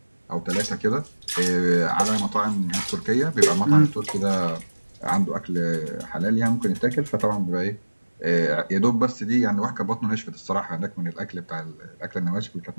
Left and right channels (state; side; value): inverted; both; correlation -1.00